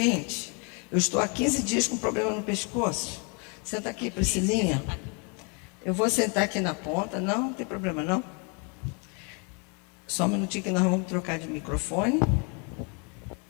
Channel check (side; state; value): right; quieter; 34.9 dB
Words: eu estou há 15 dias com problema no pescoço. Senta aqui, Priscilinha. Eu vou sentar aqui na ponta. Não tem problema, não. Só um minutinho que nós vamos trocar de microfone.